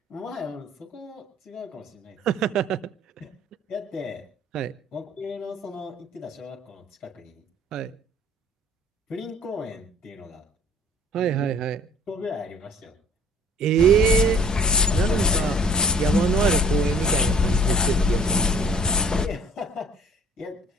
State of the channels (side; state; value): both; normal; correlation 0.56